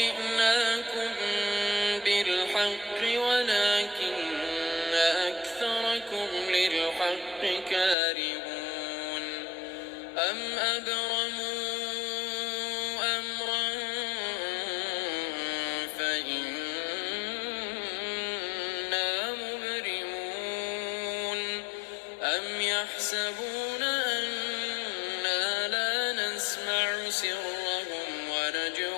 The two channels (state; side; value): drops out; right; at 8.0 s